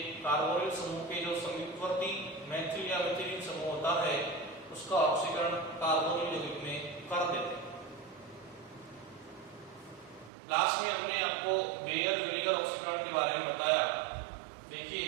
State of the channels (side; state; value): left; drops out; at 10.3 s